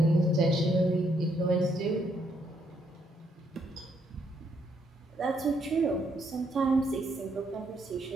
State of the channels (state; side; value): normal; both; correlation 0.73